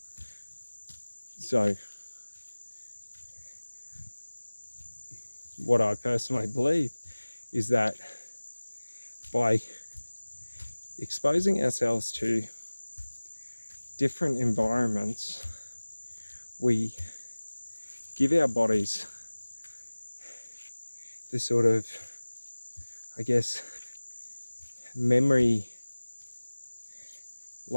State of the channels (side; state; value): both; inverted; correlation -1.00